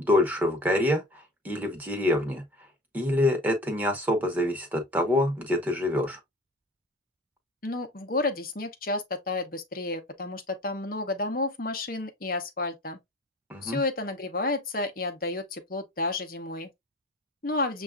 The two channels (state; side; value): normal; both; correlation 0.39